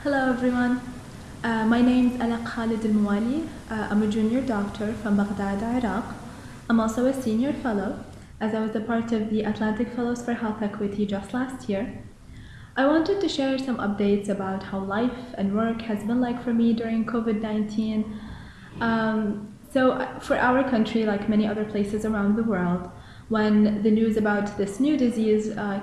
Hello everyone. My name is Alaq Al-Muwali. I'm a junior doctor from Baghdad, Iraq. I'm also a senior fellow, as I was a part of the Atlantic Fellows for Health Equity just last year. I wanted to share some updates about how life and work has been like for me during COVID-19. Um, for our country, like many other places around the world, when the news about this new disease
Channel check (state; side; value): identical; both; correlation 1.00